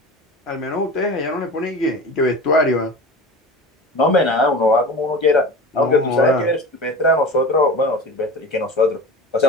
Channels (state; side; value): normal; both; correlation 0.34